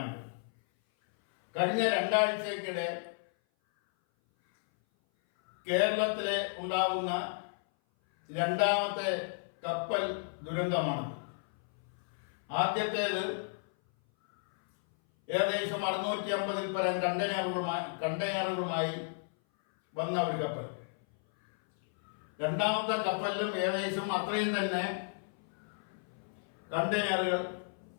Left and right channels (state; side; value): silent; right; 56 dB below the other